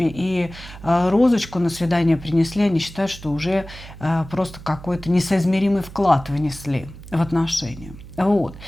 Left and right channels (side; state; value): right; noise; hum, 16 dB below the sound